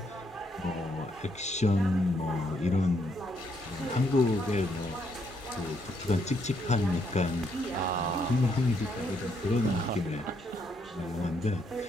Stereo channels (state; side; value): normal; both; correlation 0.74